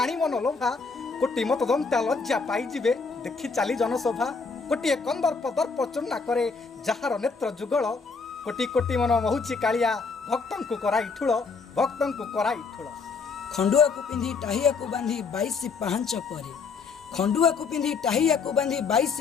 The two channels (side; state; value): right; quieter; 4.8 dB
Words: मन लोभा कोटी मतदंता लज्जा पाइजिबे देखि चाली जनसभा कोटी कंदर्प दर्प चूर्णा करे जहार नेत्र जुगल कोटी कोटी मन महुची कालिया भक्तंकु कराई ठुळ भक्तंकु कराई ठुळ खंडुआ को पिंधि टाहिया को बांधी 22 पाहांच परे खंडुआ को पिंधि टाहिया को बांधी 22